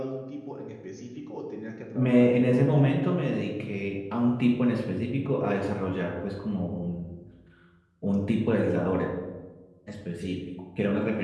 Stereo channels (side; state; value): both; identical; correlation 1.00